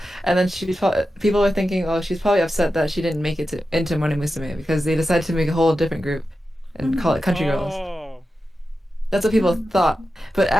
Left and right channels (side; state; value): both; normal; correlation 0.91